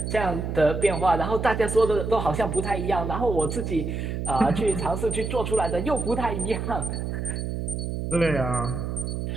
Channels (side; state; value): right; noise; hum, 3 dB below the sound